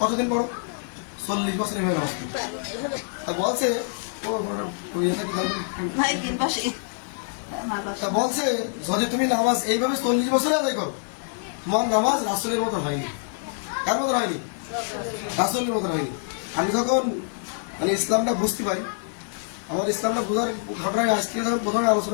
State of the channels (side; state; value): right; silent; digital silence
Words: পড়ো? 40 বছর এইভাবে নামাজ পড়ছি। তা বলছে তা বলছে যদি তুমি নামাজ এইভাবে 40 বছরে আদায় করো, তোমার নামাজ রাসূলের মতো হয়নি। কার মতো হয়নি? রাসূলের মতো হয়নি। আমি যখন মানে ইসলামটা বুঝতে পারি, আমার ইসলামটা বোঝার ঘটনায় আজকে যখন প্রথমে